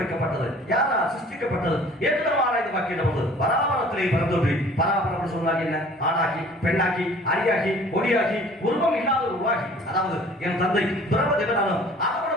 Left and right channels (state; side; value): normal; both; correlation 0.50